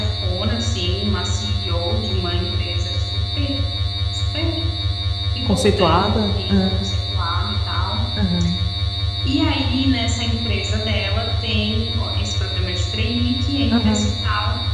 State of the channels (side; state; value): both; identical; correlation 1.00